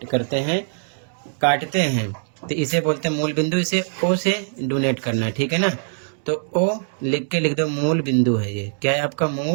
करते हैं, काटते हैं, तो इसे बोलते हैं मूल बिंदु। इसे ओ से डोनेट करना है, ठीक है ना। तो ओ लिख के लिख दो, मूल बिंदु है ये। क्या है आपका?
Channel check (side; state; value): left; silent; digital silence